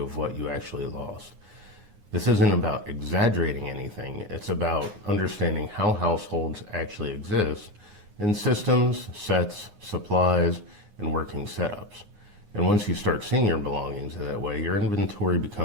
of what you actually lost. This isn't about exaggerating anything, it's about understanding how households actually exist in systems, sets, supplies, and working setups. And once you start seeing your belongings that way, your inventory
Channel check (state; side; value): late; left; 9.6 ms